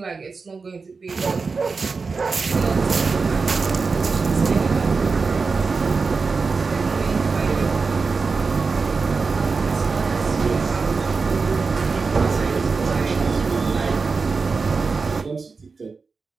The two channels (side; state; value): left; quieter; 4.6 dB